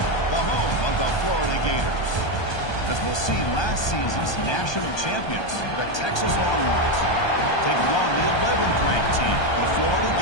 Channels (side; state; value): right; late; 1.2 ms